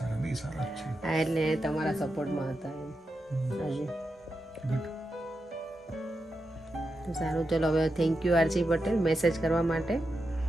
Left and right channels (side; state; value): both; normal; correlation 0.88